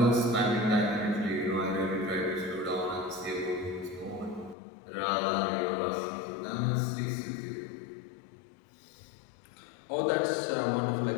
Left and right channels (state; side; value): drops out; right; at 4.5 s